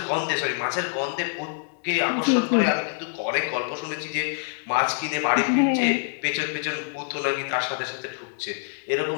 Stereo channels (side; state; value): right; silent; digital silence